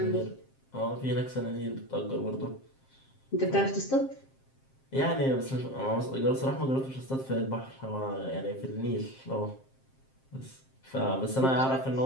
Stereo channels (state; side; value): late; right; 7.5 ms